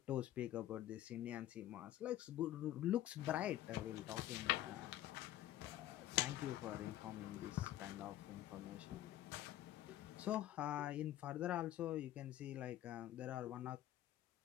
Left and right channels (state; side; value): quieter; right; 13.4 dB